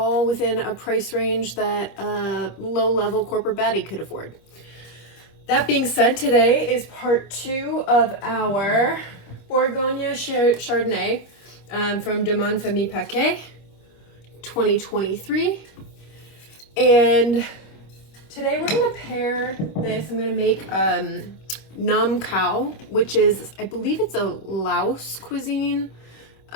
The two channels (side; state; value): right; late; 25 ms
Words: within a price range that a low-level corporate baddie could afford. That being said, today is part 2 of our Bourgogne Chardonnay from Domaine Famille Paquet 2023. And today we're gonna pair this. I'm gonna make nam khao, which is, I believe it's a Laos cuisine,